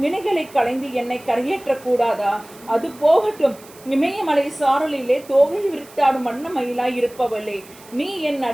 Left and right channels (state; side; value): noise; right; hiss, 22 dB below the sound